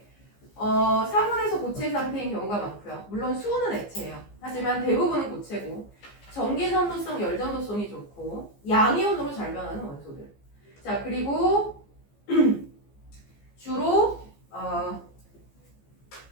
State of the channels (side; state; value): right; late; 15 ms